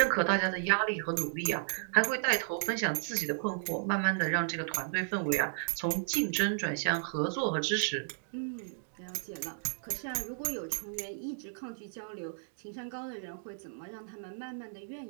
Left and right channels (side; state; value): left; silent; digital silence